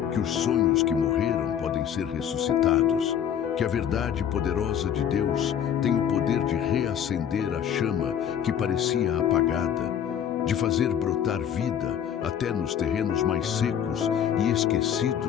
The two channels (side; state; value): right; quieter; 9.1 dB